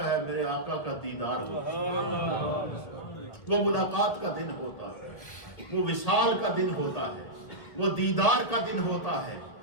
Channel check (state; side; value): late; right; 1.5 ms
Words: ہے؟ میرے آقا کا دیدار ہوتا ہے، وہ ملاقات کا دن ہوتا ہے، وہ وصال کا دن ہوتا ہے، وہ دیدار کا دن ہوتا ہے،